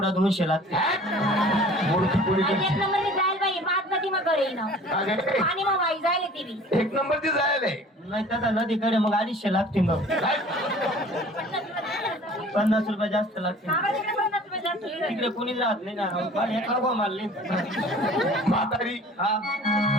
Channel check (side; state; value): both; normal; correlation 0.47